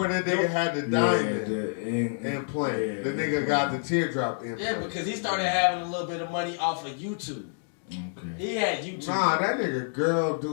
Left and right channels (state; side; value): silent; right; digital silence